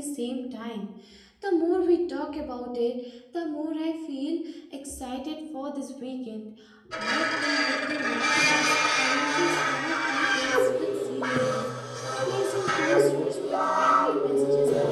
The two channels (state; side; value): identical; both; correlation 1.00